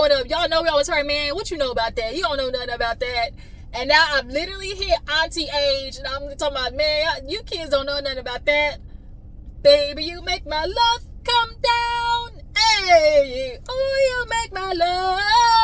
up, y'all know we always heard, man, what you know about that? You don't know nothing about that. And now I've literally hit auntie age, and I'm talking about, man, you kids don't know nothing about that. Baby, you make my love come down. Hey, oh, you make my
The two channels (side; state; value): both; identical; correlation 1.00